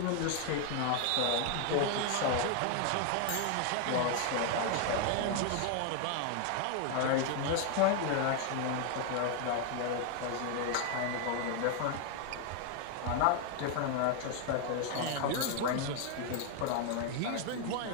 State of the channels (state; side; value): different; both; correlation 0.01